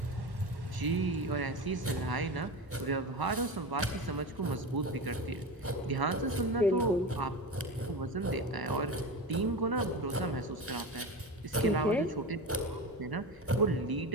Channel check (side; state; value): both; normal; correlation 0.25